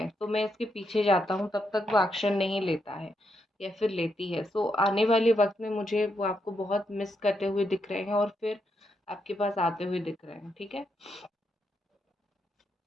तो मैं इसके पीछे जाता हूँ, तब तक वो एक्शन नहीं लेता है, या फिर लेती है। सो आने वाले वक्त में मुझे वो आपको बहुत मिस करते हुए दिख रहे हैं, और फिर आपके पास आते हुए दिख रहे हैं, ठीक है।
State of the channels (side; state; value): both; normal; correlation 0.80